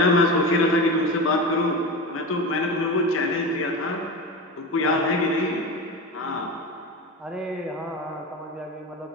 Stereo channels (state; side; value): normal; both; correlation 0.25